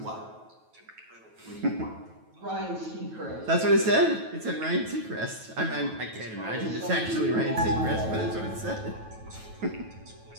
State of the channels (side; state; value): left; late; 9.2 ms